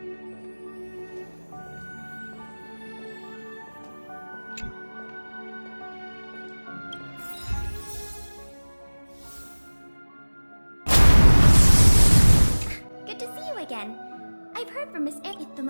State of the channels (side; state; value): both; inverted; correlation -1.00